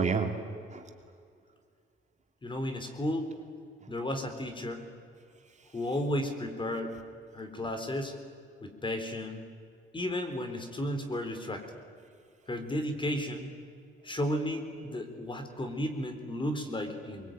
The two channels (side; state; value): both; normal; correlation 0.64